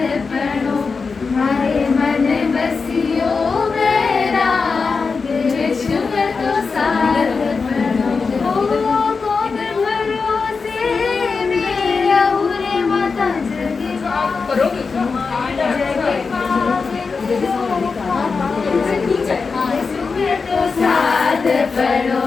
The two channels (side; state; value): right; quieter; 4.8 dB